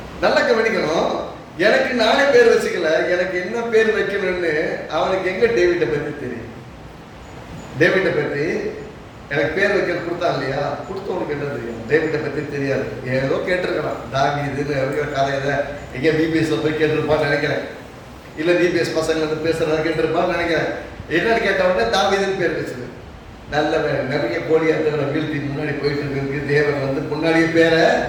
நல்லா கவனிக்கணும், எனக்கு நானே பேர் வச்சுக்கல, எனக்கு என்ன பேர் வைக்கணும்னு அவனுக்கு எங்க டேவிட்டை பற்றி தெரியும். டேவிட்டை பற்றி எனக்கு பேர் வைக்க கொடுத்தான் இல்லையா, கொடுத்தவனுக்கு என்ன தெரியும்? டேவிட்டை பற்றி தெரியாது, ஏதோ கேட்டிருக்கலாம், தாவீதுன்னு கதையில எங்க பிபிஎஸ்ல போய் கேட்டிருப்பான்னு நினைக்கிறேன், இல்ல பிபிஎஸ் பசங்க வந்து பேசுறதா கேட்டிருப்பான்னு நினைக்கிறேன். என்னன்னு கேட்டவொடனே தாவீதுன்னு பேர் வச்சது. நல்ல நிறைய கோழியாத்தங்களை வீழ்த்தி முன்னாடி போயிட்டு இருக்கு, தேவன் வந்து முன்னாடியே பேரை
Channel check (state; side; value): identical; both; correlation 1.00